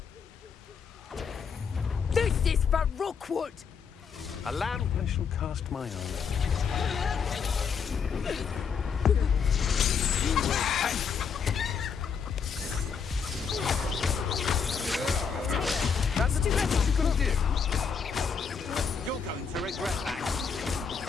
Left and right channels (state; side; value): quieter; right; 6.3 dB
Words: This is for Rookwood! Allow I shall cast my eye. That's what you're gonna do. You're going to regret that.